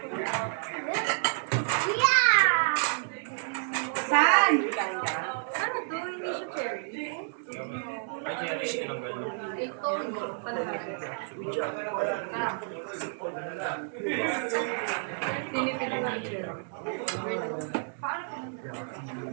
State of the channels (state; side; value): silent; left; digital silence